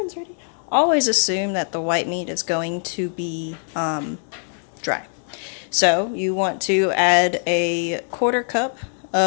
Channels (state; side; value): silent; right; 59 dB below the other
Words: the white meat is going to be dry. So you want to add a quarter cup